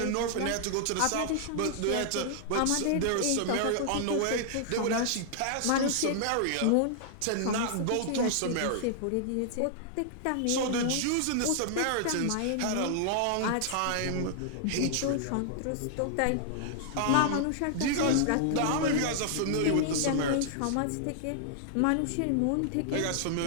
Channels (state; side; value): different; both; correlation -0.01